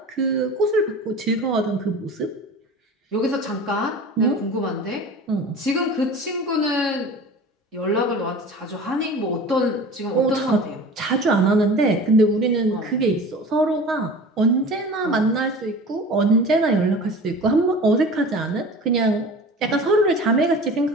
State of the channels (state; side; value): normal; both; correlation 0.38